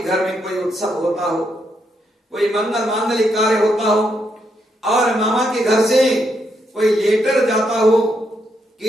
घर में कोई उत्सव होता हो, कोई मंगल मांगलिक कार्य होता हो और मामा के घर से कोई लेटर जाता हो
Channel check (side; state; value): both; normal; correlation 0.79